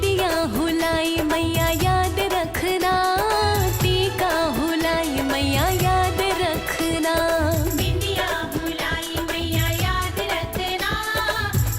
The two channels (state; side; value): identical; both; correlation 1.00